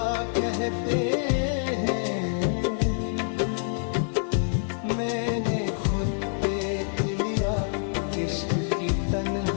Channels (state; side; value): silent; right; 60 dB below the other